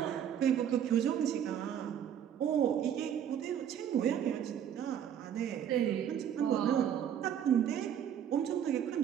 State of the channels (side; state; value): left; quieter; 9.3 dB